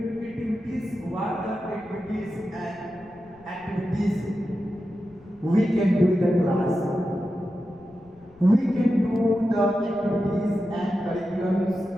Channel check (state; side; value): noise; left; rumble, 27 dB below the sound